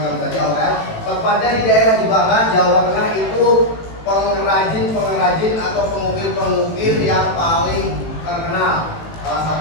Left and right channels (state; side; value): late; right; 18 ms